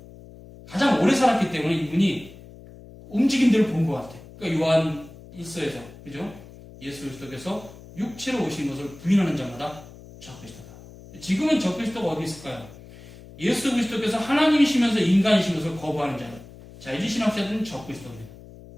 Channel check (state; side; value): noise; left; hum, 19 dB below the sound